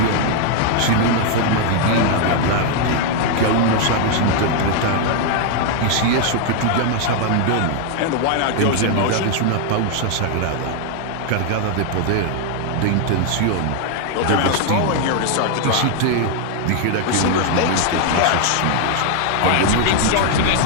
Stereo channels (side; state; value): both; different; correlation 0.00